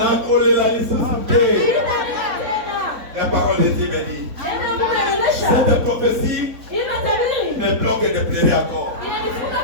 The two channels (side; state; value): left; late; 4.0 ms